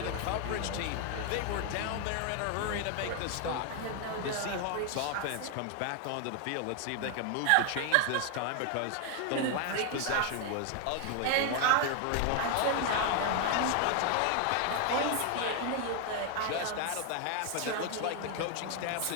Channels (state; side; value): different; both; correlation 0.01